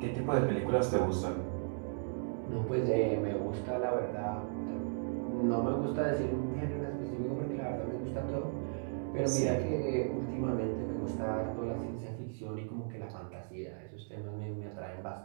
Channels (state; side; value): silent; left; digital silence